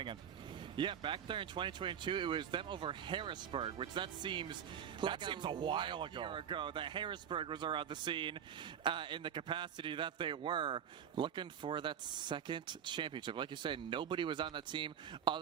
end. Yeah, back there in 2022, it was them over Harrisburg, which that seems like a while ago. Year ago that Harrisburg was around the scene in the capacity that they were, looking for that second championship. Like you said, nobody was on that team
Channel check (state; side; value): quieter; left; 8.7 dB